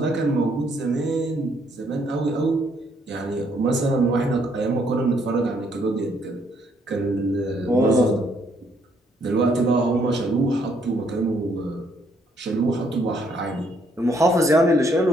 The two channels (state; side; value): normal; both; correlation 0.69